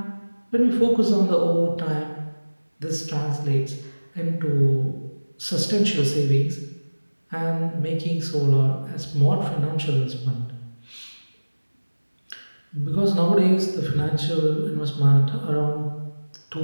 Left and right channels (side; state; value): both; inverted; correlation -1.00